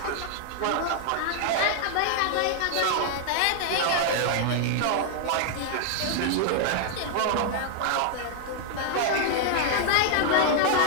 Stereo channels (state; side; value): different; both; correlation 0.00